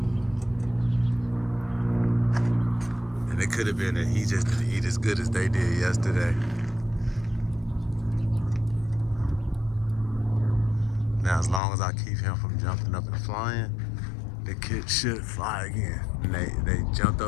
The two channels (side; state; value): right; drops out; at 11.6 s